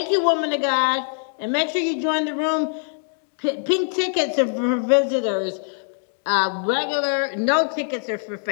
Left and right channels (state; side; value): silent; right; digital silence